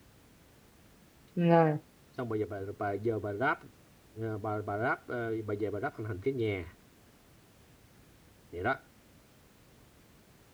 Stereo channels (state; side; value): identical; both; correlation 1.00